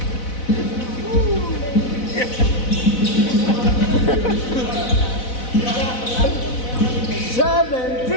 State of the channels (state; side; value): late; right; 4.0 ms